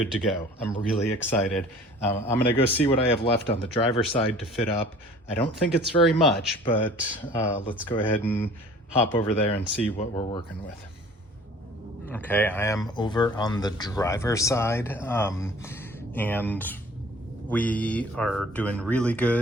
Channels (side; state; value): both; normal; correlation 0.48